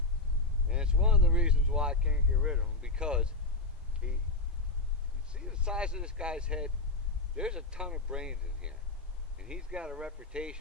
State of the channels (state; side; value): quieter; right; 3.0 dB